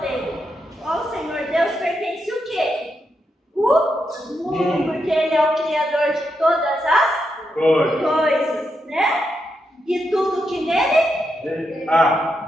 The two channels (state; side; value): normal; both; correlation 0.83